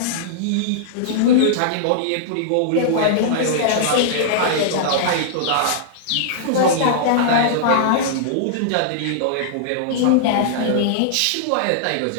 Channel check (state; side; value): different; both; correlation -0.02